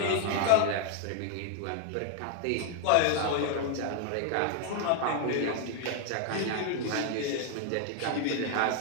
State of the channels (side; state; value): both; different; correlation 0.00